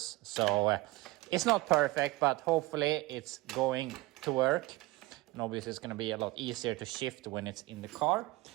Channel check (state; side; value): quieter; left; 20.3 dB